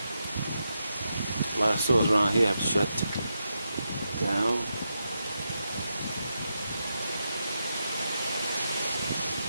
A lot of stores around here have shut down.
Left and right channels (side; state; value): both; inverted; correlation -0.86